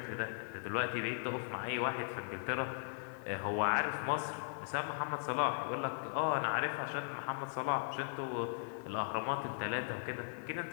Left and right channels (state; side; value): silent; right; 52 dB below the other